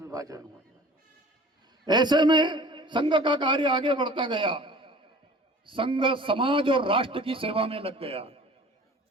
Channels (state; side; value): normal; both; correlation 0.45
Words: हुआ। ऐसे में संघ का कार्य आगे बढ़ता गया, संघ समाज और राष्ट्र की सेवा में लग गया।